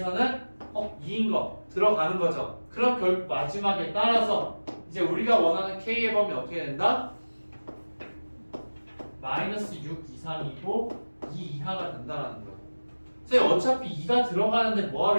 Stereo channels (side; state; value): both; inverted; correlation -1.00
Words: 2인 거 들어가는 거죠. 그럼 결국 마지막에 따라서 이제 우리가 원하는 K의 범위 어떻게 된다? 마이너스 6 이상이고 2 이하가 된다는 거예요. 선생님 어차피 2가 들어가는데